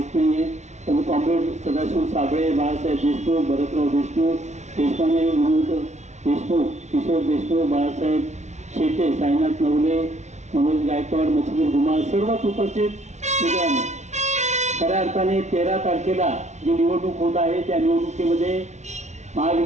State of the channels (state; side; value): late; left; 0.33 ms